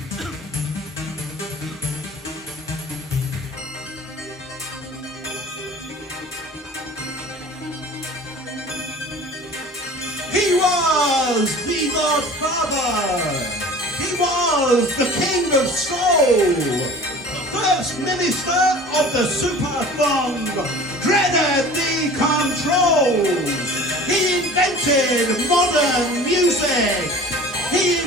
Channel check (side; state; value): both; normal; correlation 0.42